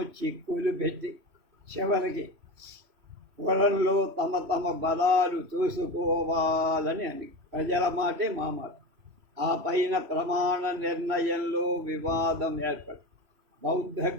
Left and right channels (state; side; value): late; left; 3.0 ms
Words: చిక్కులు పెట్టి చివరికి పొలంలో తమ తమ బలాలు చూసుకోవాలని అని ప్రజల మాటే మా మాట. ఆ పైన ప్రమాణ నిర్ణయంలో వివాదం ఏర్పడి బౌద్ధ